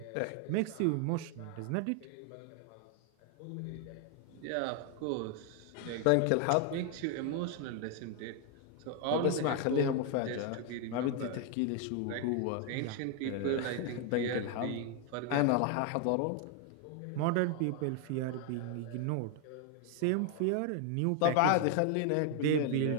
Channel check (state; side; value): different; both; correlation 0.01